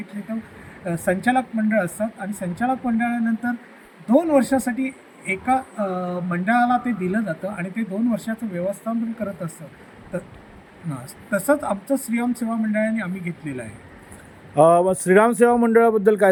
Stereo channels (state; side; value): identical; both; correlation 1.00